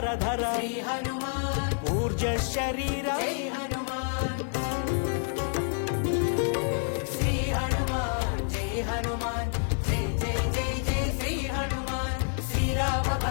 ధర శ్రీ హనుమాన్ ఊర్జ శరీర జై హనుమాన్ శ్రీ హనుమాన్ జై హనుమాన్ జై జై జై జై శ్రీ హనుమాన్ శ్రీరామ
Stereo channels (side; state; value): right; silent; 59 dB below the other